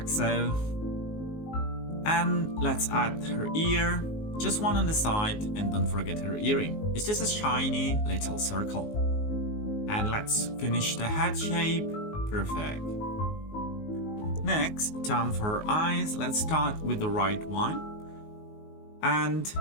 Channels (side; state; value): right; late; 19 ms